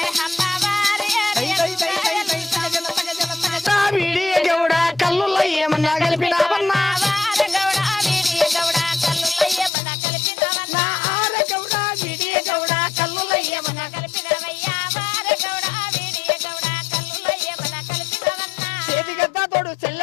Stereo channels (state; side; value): drops out; right; at 9.7 s